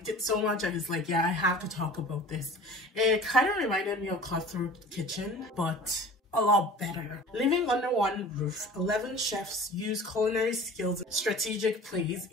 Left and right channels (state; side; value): normal; both; correlation 0.42